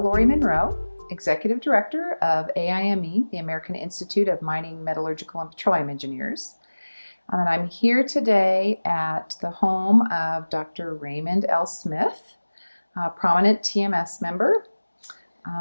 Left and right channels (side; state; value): both; inverted; correlation -1.00